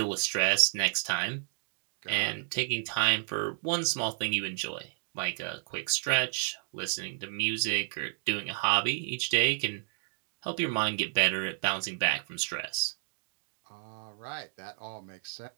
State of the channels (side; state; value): left; silent; digital silence